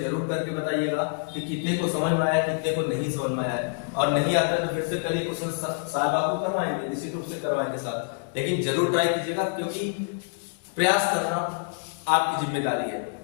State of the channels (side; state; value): right; silent; 60 dB below the other